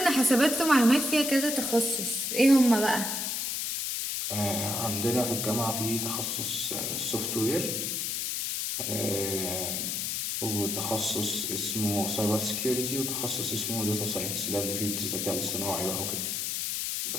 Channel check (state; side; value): noise; left; hiss, 1 dB below the sound